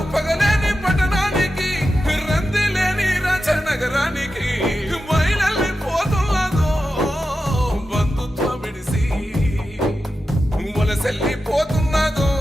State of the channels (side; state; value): both; normal; correlation 0.91